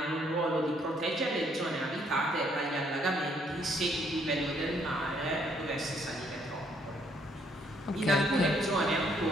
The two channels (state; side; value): normal; both; correlation 0.68